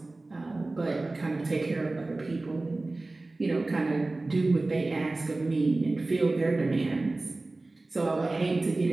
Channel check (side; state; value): left; quieter; 3.1 dB